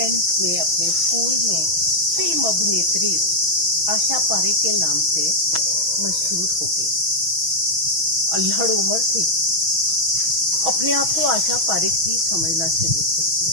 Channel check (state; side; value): late; left; 6.2 ms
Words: में, अपने स्कूल में फिल्म अभिनेत्री आशा पारेख के नाम से मशहूर हो गई। अल्हड़ उम्र थी। अपने आप को आशा पारेख ही समझना शुरू कर